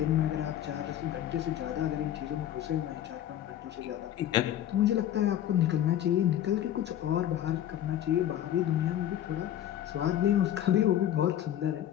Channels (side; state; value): right; quieter; 11.5 dB